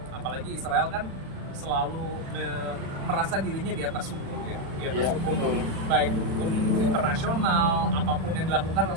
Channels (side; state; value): left; late; 36 ms